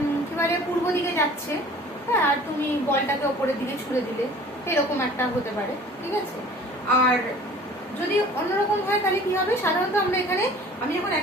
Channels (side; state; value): both; normal; correlation 0.47